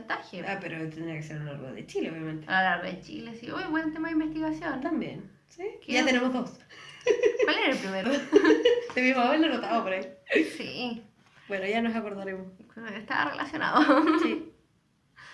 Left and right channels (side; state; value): both; identical; correlation 1.00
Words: Ah, pero tendría que ser a lo largo de Chile, obviamente. A lo largo de Chile, sí. Uy, buen tema de investigación. También, ¿sí? ¿Qué? Ya tenemos 2. ¿Cuál era el primero? De mi mamá lo notaba por ahí. Sí. Bueno, ya nos acordaremos. Estaba relacionado. Sí.